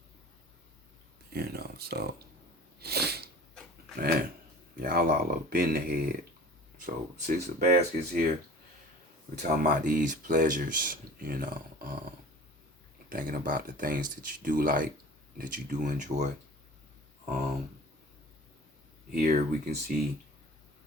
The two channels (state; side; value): normal; both; correlation 0.42